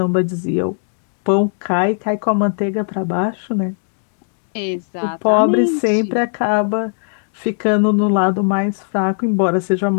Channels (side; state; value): right; silent; digital silence